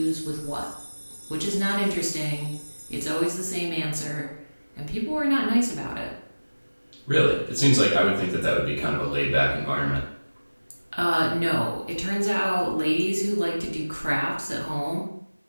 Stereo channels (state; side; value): inverted; both; correlation -1.00